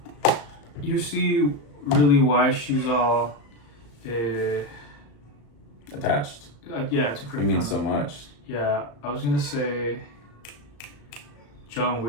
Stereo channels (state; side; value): late; right; 35 ms